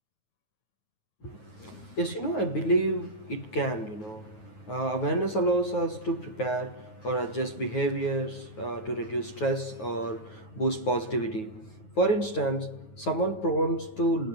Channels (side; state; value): right; late; 9.4 ms